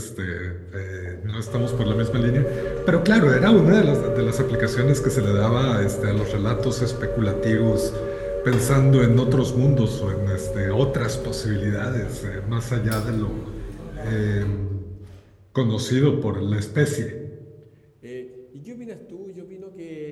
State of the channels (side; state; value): both; identical; correlation 1.00